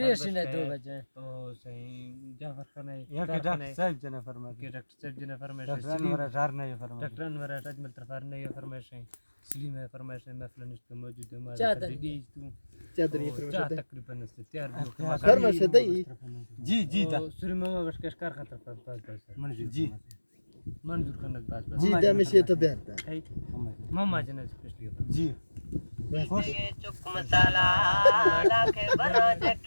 है 2 बजे तो सही जाफर खान है या के डॉक्टर साहब जना फरमाइश के डॉक्टर साहब जना फरमाइश डॉक्टर वरा जार नहीं फरमाइश डॉक्टर वरा अजमल तरफार नहीं फरमाइश है सलीम है फरमाइश है महफिल नष्ट मौजूद है हमारे दी तू चादरी फरमाइश तकरीबन तैयार फरमाइश दई जी जी दा सूर्य मामा बस कार खतर पास मंजूर जी मंजूर खान पास जी दा मशي तबعت मामा जना स्पेशली जी खुश चुक मसाला लाके बरा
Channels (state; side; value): inverted; both; correlation -1.00